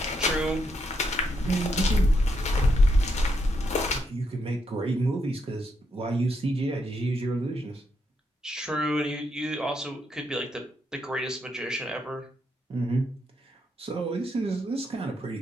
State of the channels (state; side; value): normal; both; correlation 0.79